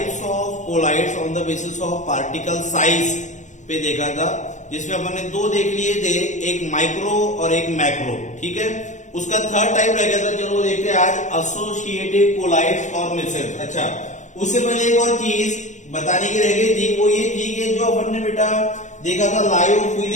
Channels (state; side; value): late; right; 0.35 ms